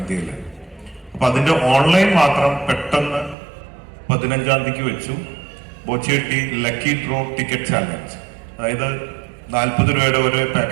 അപ്പൊ അതിന്റെ ഓൺലൈൻ മാത്രം പെട്ടെന്ന് 15-ാം തീയതിക്ക് വെച്ചു. ബോച്ചേട്ടി ലക്കി ഡ്രോ ടിക്കറ്റ് ചാലഞ്ച്, അതായത് 40 രൂപയുടെ ഒരു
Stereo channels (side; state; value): left; drops out; at 3.4 s